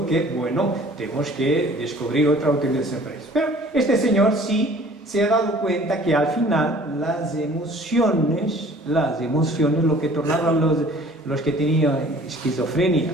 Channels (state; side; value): normal; both; correlation 0.51